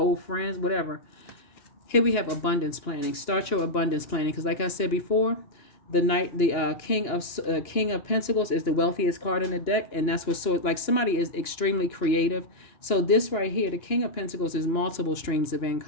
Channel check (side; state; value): right; late; 2.9 ms